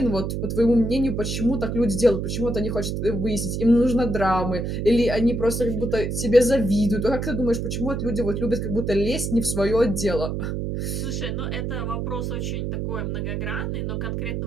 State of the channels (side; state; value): right; noise; hum, 2 dB below the sound